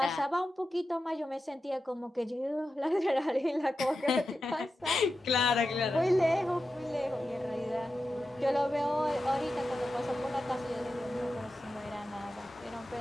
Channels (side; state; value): both; normal; correlation 0.91